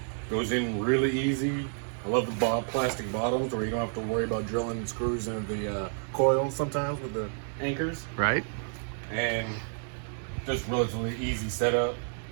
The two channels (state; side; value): silent; left; 58 dB below the other